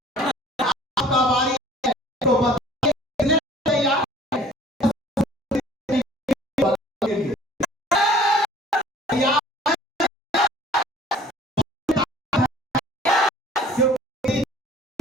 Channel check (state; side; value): normal; both; correlation 0.50